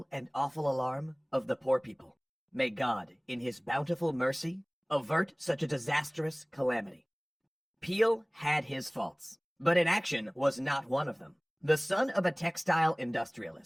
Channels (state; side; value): identical; both; correlation 1.00